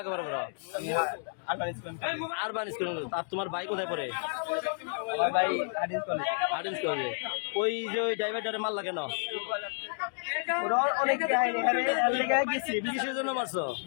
করো? Urban school. আর তোমার ভাই কোথায় পড়ে? আর্টিন্স কলেজে। ওই যে ওই ড্রাইভারটারে মারলা কেন? কিসের জন্য মারছো?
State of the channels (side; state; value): right; silent; digital silence